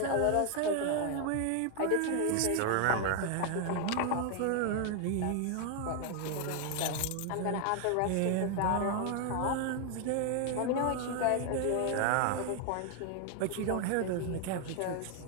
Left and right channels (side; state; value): both; different; correlation 0.00